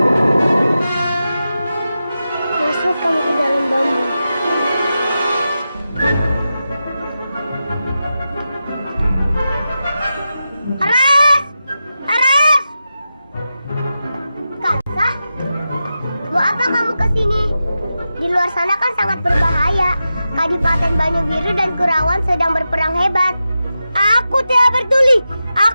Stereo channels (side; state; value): both; inverted; correlation -0.91